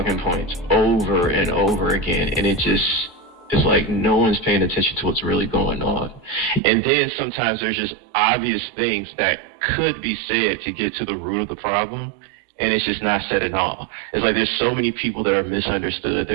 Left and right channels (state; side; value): drops out; left; at 6.6 s